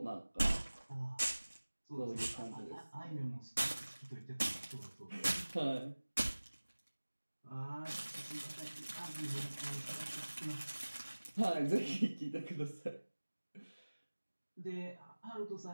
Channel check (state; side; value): inverted; both; correlation -1.00